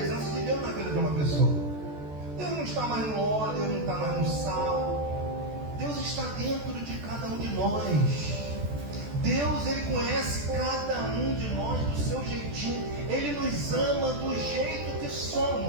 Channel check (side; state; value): left; late; 14 ms